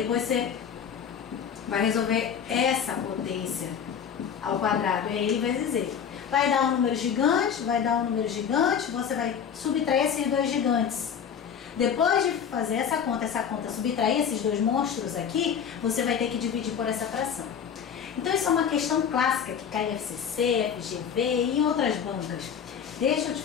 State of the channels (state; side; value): quieter; right; 7.7 dB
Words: você vai resolver essa potência ao quadrado, é ele vezes ele. Vai dar um número gigante, você vai subtrair esses dois gigantes. Depois de fazer essa conta, subtrair esses dois monstros aqui, você vai ter que dividir por essa fração. Então isso é uma questão clássica que cai em FCC, FGV e em outras bancas. Deixa eu te